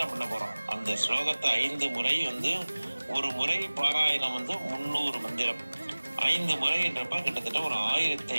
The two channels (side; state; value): both; inverted; correlation -1.00